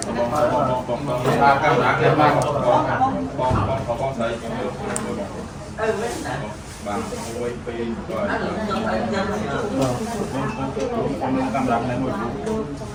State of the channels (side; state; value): both; identical; correlation 1.00